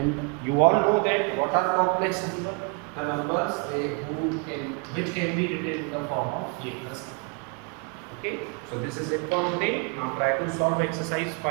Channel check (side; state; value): left; quieter; 34.3 dB